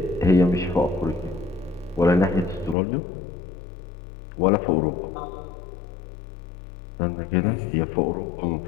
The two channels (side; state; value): right; drops out; at 2.8 s